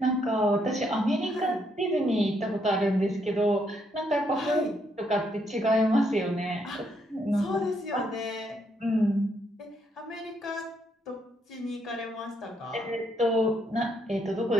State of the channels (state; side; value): normal; both; correlation 0.75